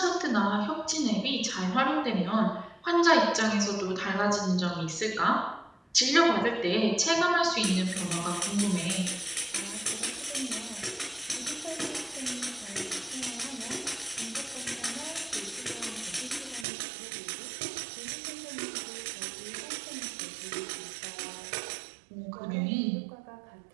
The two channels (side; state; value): left; drops out; at 16.7 s